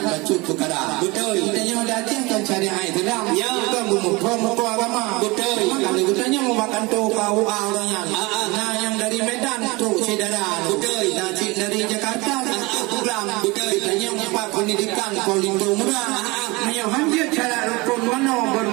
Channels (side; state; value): left; quieter; 24.2 dB